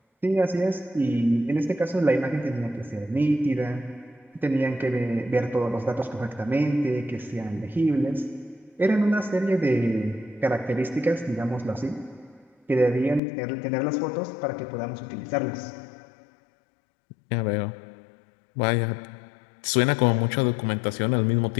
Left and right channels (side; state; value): right; drops out; at 13.2 s